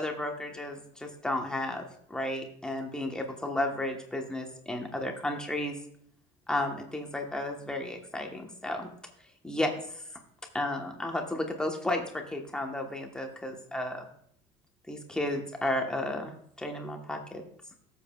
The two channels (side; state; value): both; normal; correlation 0.64